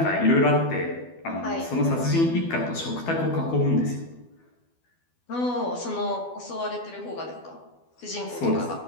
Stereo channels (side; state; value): right; late; 12 ms